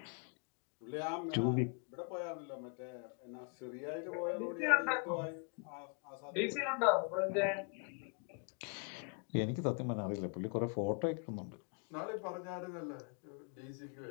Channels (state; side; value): quieter; right; 37.9 dB